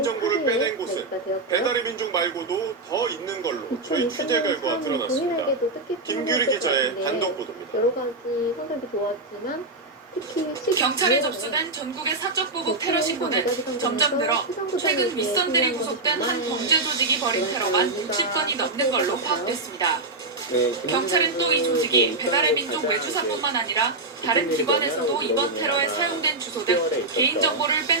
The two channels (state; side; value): quieter; left; 3.1 dB